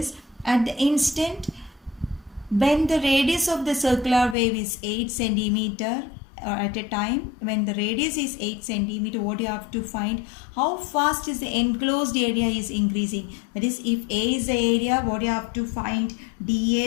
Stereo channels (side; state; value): right; drops out; at 4.4 s